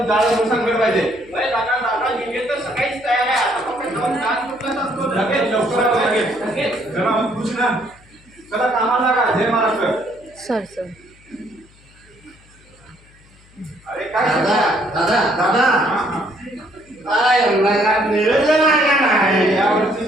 जाळं सांगणार पाहिजे. डीजे तर सकाळीच तयार आहे. आता फक्त डान्स ग्रुपलाच असतो. लगेच लवकर लगेच जरा खुश ना. चला कामाला लागा. जय महाराष्ट्र. सर अरे काय यावर्षी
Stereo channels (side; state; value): left; noise; hum, 28 dB below the sound